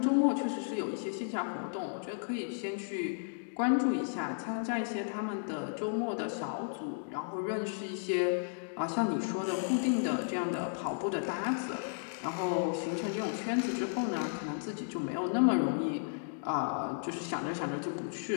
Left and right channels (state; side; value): silent; right; digital silence